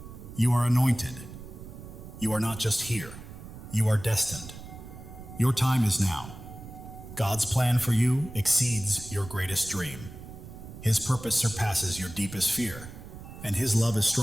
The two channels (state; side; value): noise; right; rumble, 14 dB below the sound